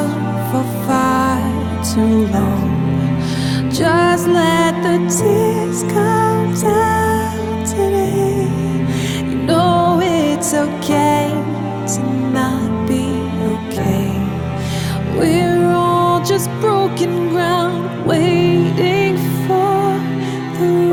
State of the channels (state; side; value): identical; both; correlation 1.00